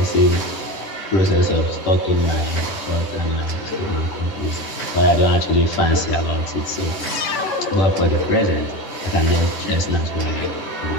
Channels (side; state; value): right; late; 10 ms